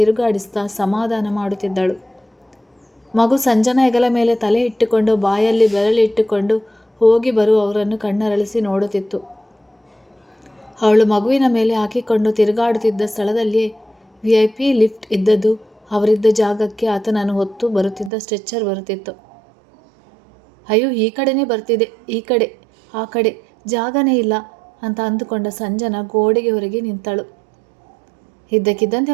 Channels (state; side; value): drops out; left; at 18.1 s